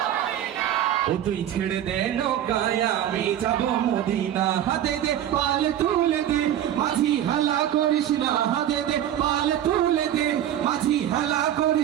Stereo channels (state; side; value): quieter; left; 11.2 dB